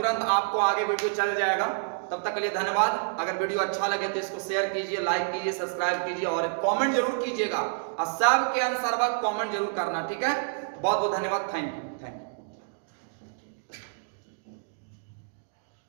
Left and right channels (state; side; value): silent; left; digital silence